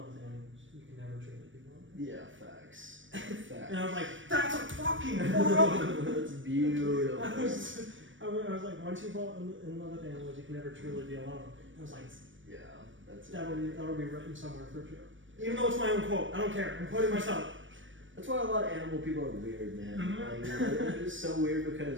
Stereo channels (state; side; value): late; left; 0.56 ms